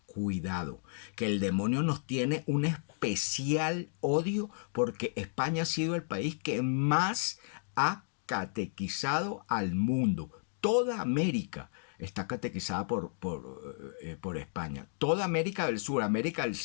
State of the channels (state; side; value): silent; right; digital silence